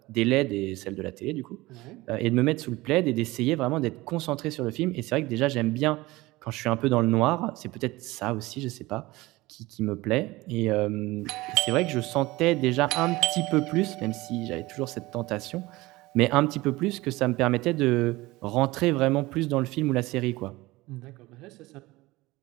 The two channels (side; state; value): left; quieter; 20.1 dB